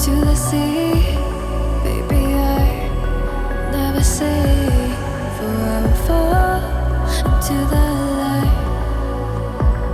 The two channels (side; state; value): both; identical; correlation 1.00